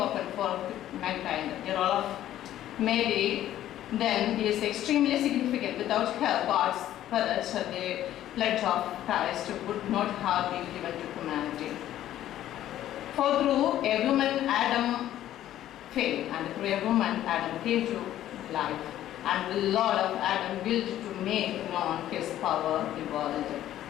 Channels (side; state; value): right; quieter; 12.6 dB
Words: for mankind. The role of Mary then is extremely significant. Without her, God's Spirit, the pledge of Christ would not have been given to humanity. For through a woman, Adam failed, and through a woman, Adam came to life. And the Lord of Adam willed to make known his power in the world.